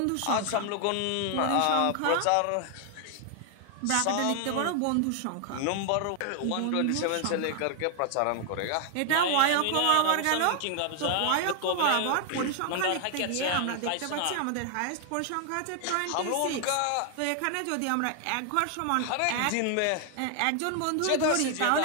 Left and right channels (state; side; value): different; both; correlation 0.00